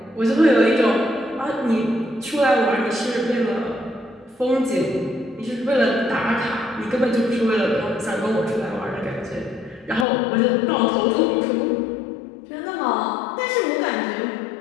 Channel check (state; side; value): drops out; right; at 10.1 s